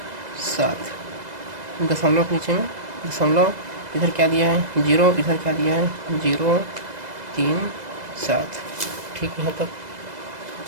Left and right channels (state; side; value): late; left; 2.0 ms